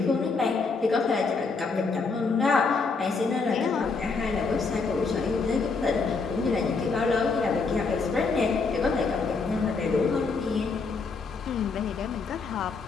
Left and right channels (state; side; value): quieter; right; 4.4 dB